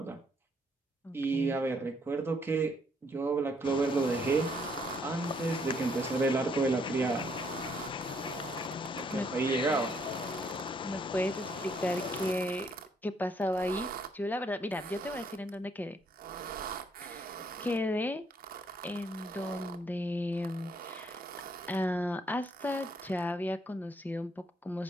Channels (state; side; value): normal; both; correlation 0.69